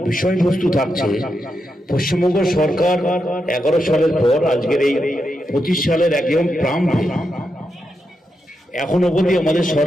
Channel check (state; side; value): normal; both; correlation 0.85